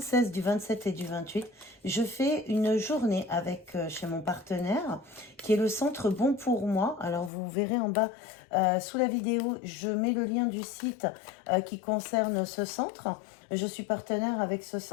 du 27 et du 28, je fais une journée avec chez mon partenaire qui est le centre Bon pour moi. Alors vous verrez en bas sous la vidéo, je mets le lien du site qui concerne ce centre. Je suis partenaire avec ce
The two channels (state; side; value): drops out; right; at 7.3 s